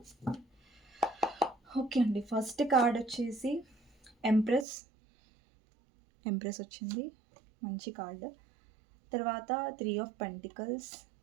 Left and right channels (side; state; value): left; drops out; at 4.7 s